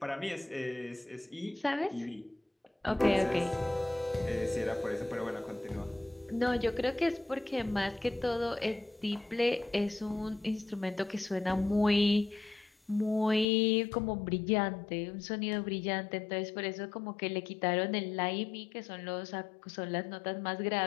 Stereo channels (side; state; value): right; drops out; at 13.5 s